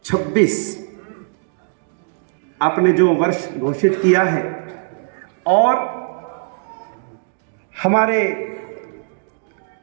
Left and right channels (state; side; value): silent; left; digital silence